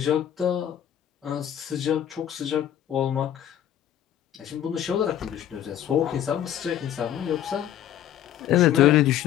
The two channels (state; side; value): quieter; right; 10.9 dB